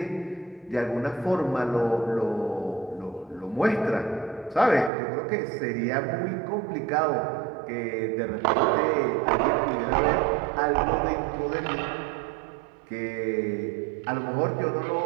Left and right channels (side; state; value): left; drops out; at 4.9 s